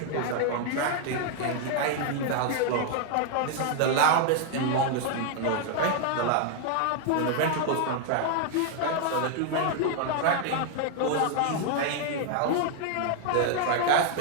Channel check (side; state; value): both; different; correlation 0.00